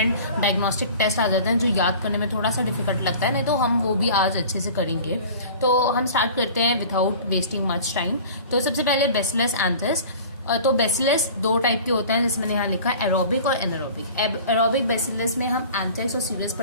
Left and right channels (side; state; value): both; inverted; correlation -0.42